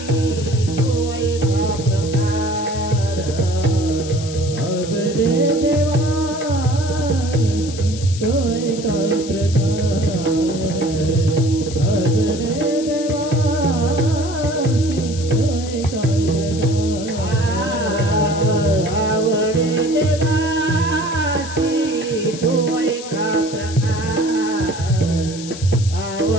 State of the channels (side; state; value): left; noise; hiss, 13 dB below the sound